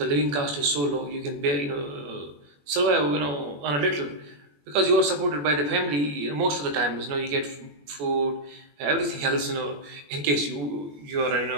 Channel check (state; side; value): late; left; 21 ms